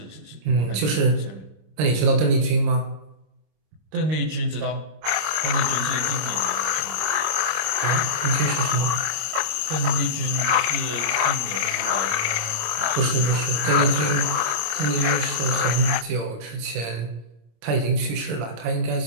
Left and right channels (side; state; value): left; late; 25 ms